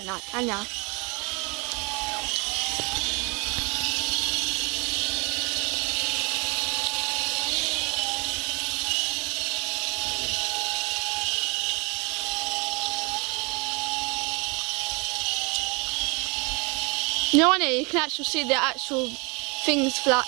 like, can ya? You know, on it you can actually see the actual things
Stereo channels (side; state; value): left; quieter; 30.0 dB